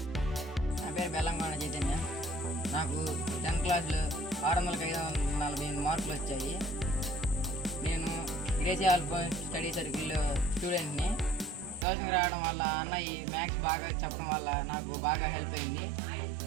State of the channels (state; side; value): drops out; left; at 11.9 s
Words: నా పేరు బెల్లంకొండ చైతన్య. నాకు 10th క్లాస్లో 600-548 మార్కులు వచ్చాయి. నేను గ్రేసీ అల్ఫాన్స్ స్టడీ సర్కిల్ స్టూడెంట్ని. ట్యూషన్కి రావడం వల్ల అన్నయ్య మ్యాథ్స్ బాగా చెప్పడం వల్ల నాకు బాగా హెల్ప్ అయింది.